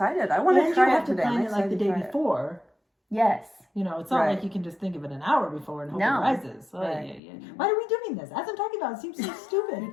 I want And to you try have it to today. plan I'm it like the excited day to try it. before. Yes. You know, it's not Right. like you can just think of it an hour before and hope No. it rises. Oh, Right. yeah, yeah. Why are we doing this? As I'm talking about, it seems so stupid.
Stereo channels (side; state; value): right; drops out; at 7.2 s